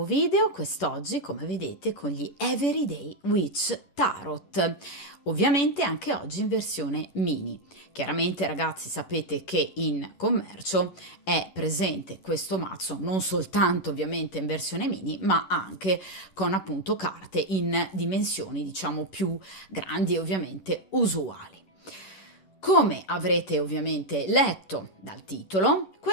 video, quest'oggi come vedete con gli Everyday Witch Tarot, ovviamente anche oggi in versione mini. Chiaramente ragazzi sapete che in commercio è presente questo mazzo non soltanto ovviamente in versione mini ma anche con appunto carte in dimensioni diciamo più grandi e ovviamente usuali. Come avrete ovviamente letto dal titolo,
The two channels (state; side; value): late; right; 11 ms